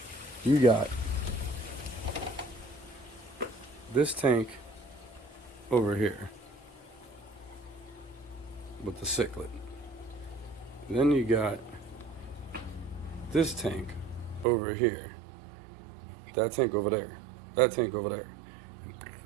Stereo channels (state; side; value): drops out; left; at 14.5 s